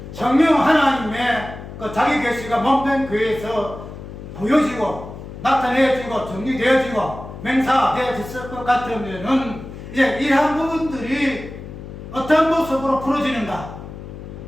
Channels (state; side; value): noise; left; hum, 12 dB below the sound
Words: 성령 하나님의 그 자기 계시가 몸된 교회에서 보여지고 나타내지고 정리되어지고 맹사되어졌을 것 같으면은 이제 이러한 부분들이 어떤 모습으로 풀어지는가,